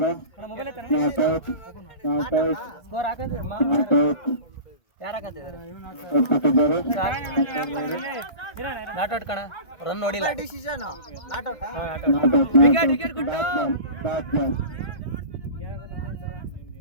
ನಾಟೌಟ್ ಕಣ, ರನ್ ನೋಡಿಲ್ಲ.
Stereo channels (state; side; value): late; right; 1.5 ms